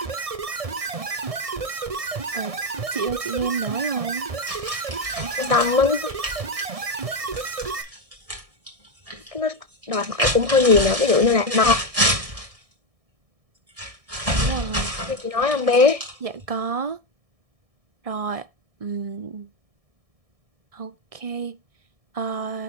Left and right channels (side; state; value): left; late; 1.6 ms